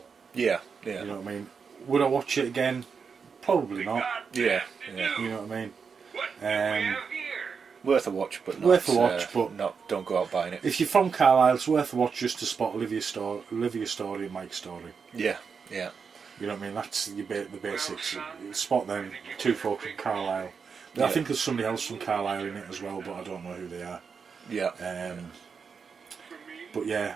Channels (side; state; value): left; quieter; 5.8 dB